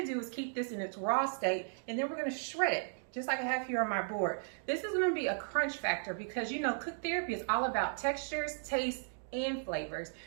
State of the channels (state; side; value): silent; left; digital silence